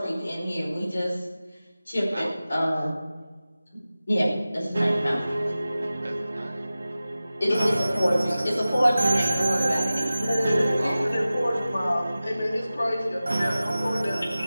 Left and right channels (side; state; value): both; inverted; correlation -0.96